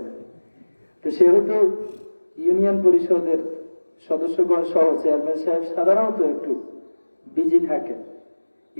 তো সেহেতু ইউনিয়ন পরিষদের সদস্যগণ সহ চেয়ারম্যান সাহেব সাধারণত একটু বিজি থাকেন।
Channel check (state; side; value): inverted; both; correlation -1.00